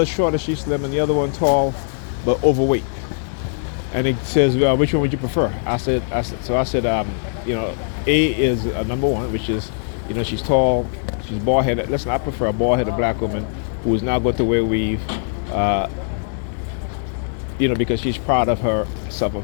shorter, she's slim, and the other one tall, but overweight. And it says, which one would you prefer? I said, you know, A is number one, which is, you know, she's tall, she's bald-headed. Listen, I prefer a bald-headed black woman who is not going to wear weave, you know, because she's proud of herself, of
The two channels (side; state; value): right; silent; digital silence